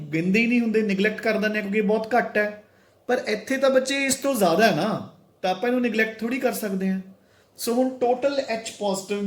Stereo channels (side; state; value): both; identical; correlation 1.00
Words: गिनदे ही नहीं हुंदे, निगलैक्ट कर दिंदे क्योंकि बहुत घट है, पर इत्थे तो बच्चे इस तो ज़्यादा है ना, तो आपां इहनूं निगलैक्ट थोड़ी कर सकते हैं। सो हुण टोटल H पॉजिटिव